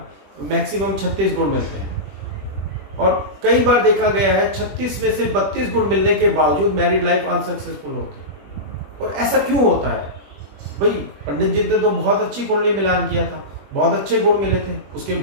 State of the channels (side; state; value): left; late; 21 ms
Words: मैक्सिमम 36 गुण मिलते हैं। और कई बार देखा गया है 36 में से 32 गुण मिलने के बावजूद मैरिड लाइफ अनसक्सेसफुल होती है। और ऐसा क्यों होता है भाई? पंडित जी ने तो बहुत अच्छी कुंडली मिलान किया था, बहुत अच्छे गुण मिले थे, उसके